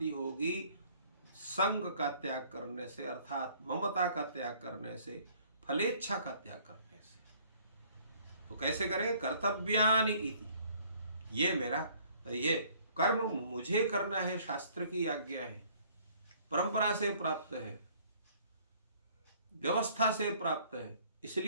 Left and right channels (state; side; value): inverted; both; correlation -0.58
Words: होगी संग का त्याग करने से, अर्थात ममता का त्याग करने से, फलेच्छा का त्याग करने से। तो कैसे करें? कर्तव्यानि इति, ये मेरा ये कर्म मुझे करना है, शास्त्र की आज्ञा है, परंपरा से प्राप्त है, व्यवस्था से प्राप्त है,